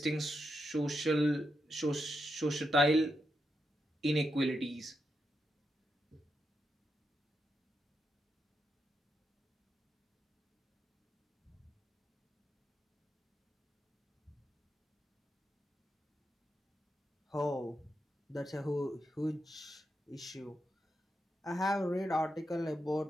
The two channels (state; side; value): normal; both; correlation 0.85